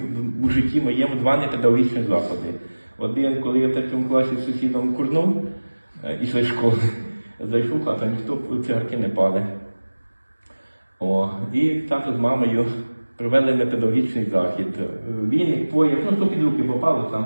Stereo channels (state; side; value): inverted; both; correlation -1.00